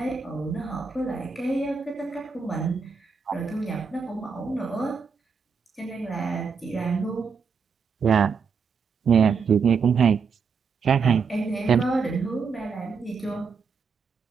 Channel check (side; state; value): left; quieter; 5.6 dB